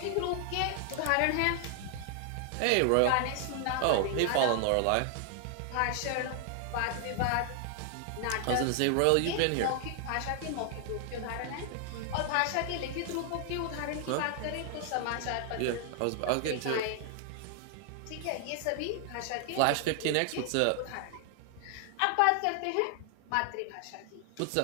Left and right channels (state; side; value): different; both; correlation 0.00